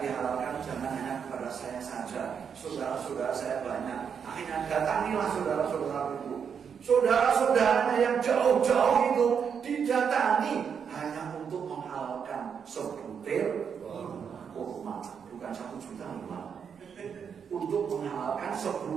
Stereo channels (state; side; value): quieter; left; 7.1 dB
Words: dihalalkan, jangan hanya kepada saya saja. Saudara-saudara saya banyak. Akhirnya datangilah saudara-saudara itu. Saudara-saudaranya yang jauh-jauh itu didatangi hanya untuk menghalalkan sebutir kurma, bukan 1 juta kurma. Untuk menghalalkan